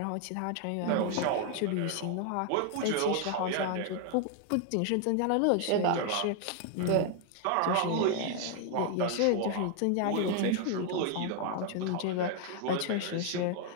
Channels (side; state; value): both; different; correlation 0.00